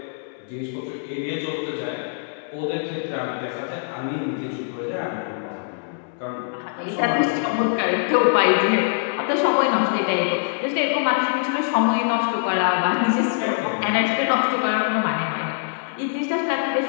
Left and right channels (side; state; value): right; silent; digital silence